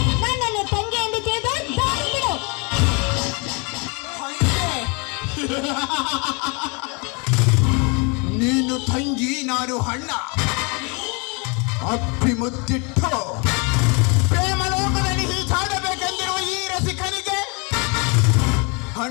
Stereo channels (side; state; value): right; quieter; 31.7 dB